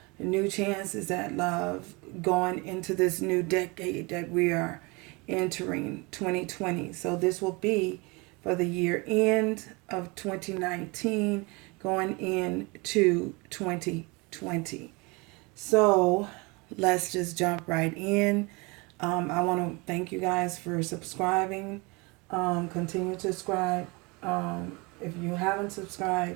new chances at love going into this new decade that we are entering 2020. So this will be for the year end of 2019 going into 2020. So let's just jump right in. I want to thank you guys for subscribing. Continue to subscribe. If you haven't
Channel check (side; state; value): left; quieter; 27.1 dB